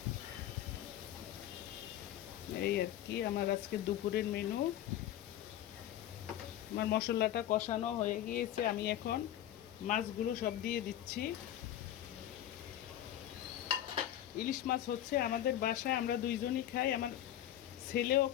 এই আর কি আমার আজকে দুপুরের মেনু। আমার মশলাটা কষানো হয়ে গিয়েছে, আমি এখন মাছগুলো সব দিয়ে দিচ্ছি। ইলিশ মাছ হচ্ছে আমাদের বাসায় আমরা দুইজনই খাই, আমার ছেলেও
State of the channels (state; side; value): quieter; right; 12.0 dB